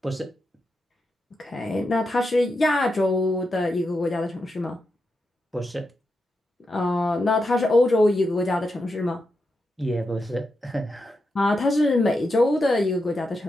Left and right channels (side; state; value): both; normal; correlation 0.86